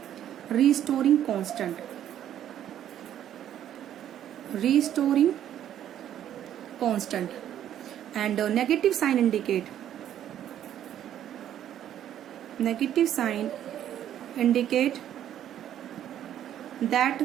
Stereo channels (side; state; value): left; quieter; 10.8 dB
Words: restoring constant, restoring constant. And negative sign indicate, negative sign indicate